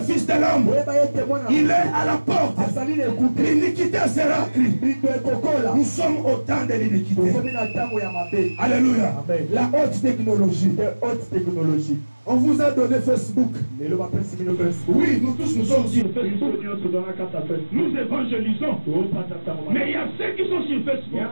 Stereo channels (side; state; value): both; inverted; correlation -1.00